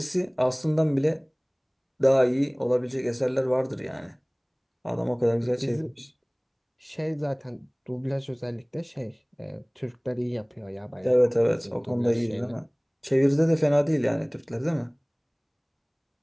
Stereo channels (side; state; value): both; identical; correlation 1.00